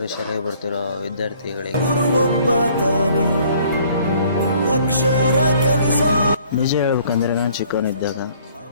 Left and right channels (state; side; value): inverted; both; correlation -0.58